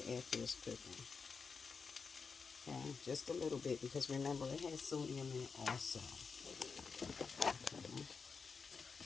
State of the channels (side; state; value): right; quieter; 5.2 dB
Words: after it's cooking. Okay, just a little bit because remember it has sodium in it also. Okay.